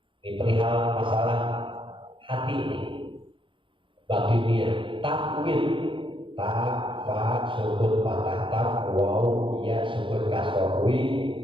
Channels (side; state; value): left; late; 0.25 ms